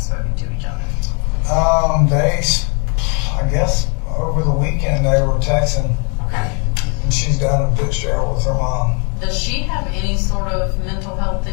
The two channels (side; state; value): right; quieter; 36.1 dB